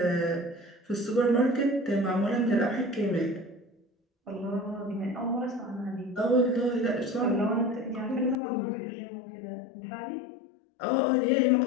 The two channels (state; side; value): drops out; right; at 8.3 s